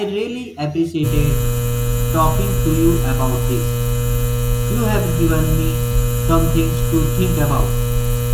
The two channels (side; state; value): both; identical; correlation 1.00